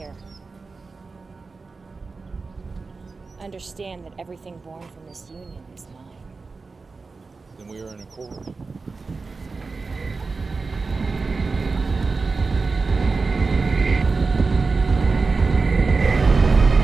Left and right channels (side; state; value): left; quieter; 4.2 dB